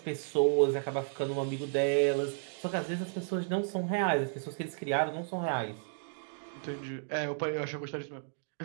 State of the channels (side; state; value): left; silent; digital silence